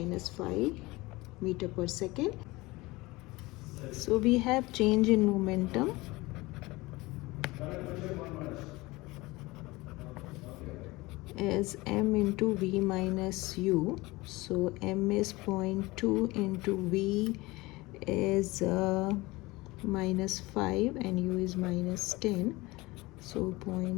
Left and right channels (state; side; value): quieter; right; 21.6 dB